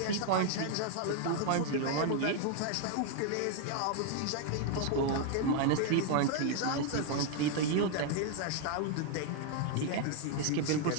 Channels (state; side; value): different; both; correlation 0.00